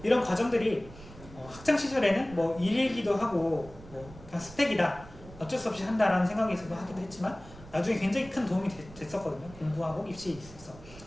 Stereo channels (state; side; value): noise; right; rumble, 18 dB below the sound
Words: 이런 과정들이 학창 시절에는 뭐 일일기도 하고 뭐 그냥 스펙이다 어쩔 수 없이 한다라는 생각이 있어도 하기도 했지만 나중에 굉장히 큰 도움이 됐었거든요. 공부하고 입시에 있어서